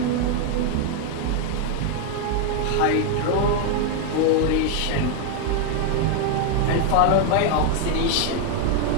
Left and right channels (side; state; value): both; different; correlation 0.01